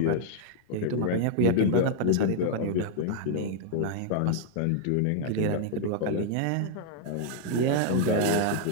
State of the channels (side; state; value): both; different; correlation -0.01